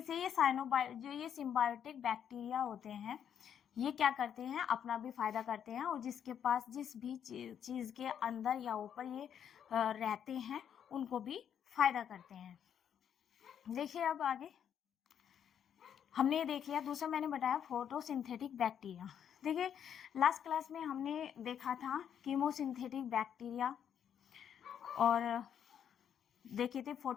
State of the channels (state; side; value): quieter; right; 8.8 dB